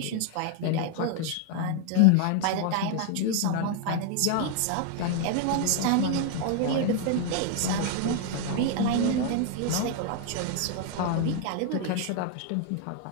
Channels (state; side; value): different; both; correlation 0.00